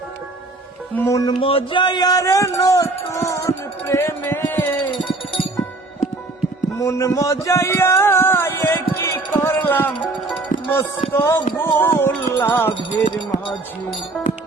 মন মজায়া রে, নতুন প্রেমে মন মজায়া, কি করলাম মস্ত ভুল লাভের মাঝে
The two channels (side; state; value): left; quieter; 3.0 dB